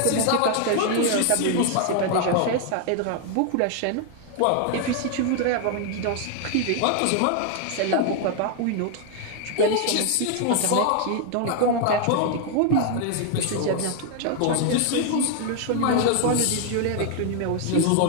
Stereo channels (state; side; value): different; both; correlation 0.00